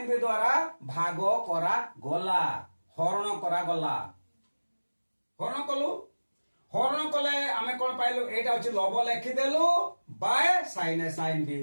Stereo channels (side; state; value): both; inverted; correlation -1.00